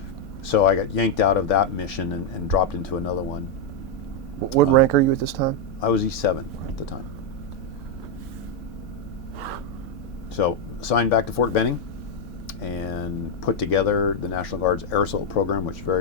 So I got yanked out of that mission and dropped into another one. What rank are you at this time? I was E7 at the time. So assigned back to Fort Benning and put together the National Guard's air assault program, which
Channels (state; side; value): normal; both; correlation 0.01